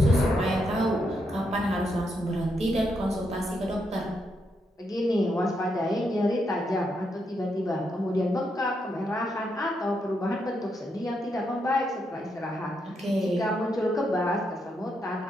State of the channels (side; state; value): both; normal; correlation 0.80